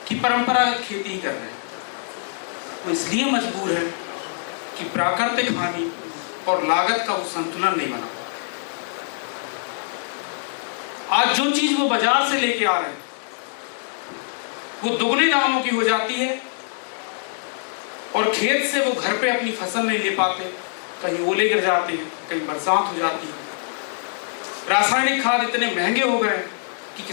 कि परंपरागत खेती ही कर रहे हैं? वो इसलिए मजबूर है कि प्राकृतिक हानि और लागत का वो संतुलन नहीं बना। आज जो चीज वो बाजार से लेके आ रहे हैं वो दुगने दामों की हो जाती है, और खेत से वो घर पे अपनी फसल नहीं ले पाते, कहीं ओले गिर जाते हैं, कहीं बरसात हो जाती है। रासायनिक खाद इतने महंगे हो गए कि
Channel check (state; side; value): silent; right; 59 dB below the other